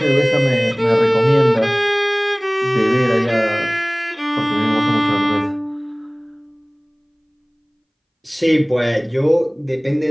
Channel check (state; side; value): identical; both; correlation 1.00